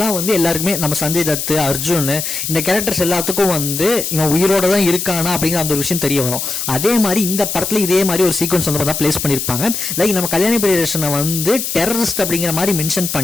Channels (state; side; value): noise; left; hiss, 3 dB below the sound